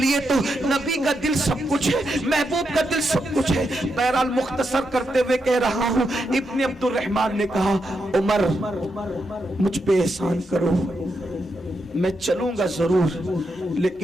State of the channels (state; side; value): normal; both; correlation 0.83